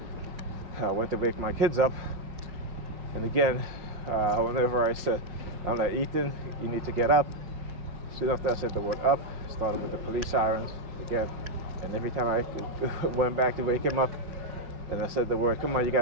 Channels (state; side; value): late; left; 5.7 ms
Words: I went to wake my kids up. And again, whenever I'm like, Ethan, you need to get up. Soon after I said the word up, started with the police sirens again. And every time I went back to wake him up and I said the word, come on, you